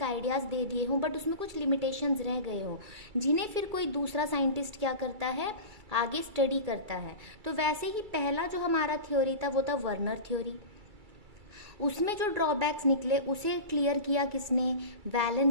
आइडियाज़ दे दिए हों, बट उसमें कुछ लिमिटेशंस रह गए हों, जिन्हें फिर कोई दूसरा साइंटिस्ट क्या करता है, आगे स्टडी करता है। तो वैसे ही पहला जो हमारा थ्योरी था वो था वर्नर थ्योरी। उसमें जो ड्रॉबैक्स निकले उसे क्लियर किया किसने?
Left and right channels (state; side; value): late; left; 2.3 ms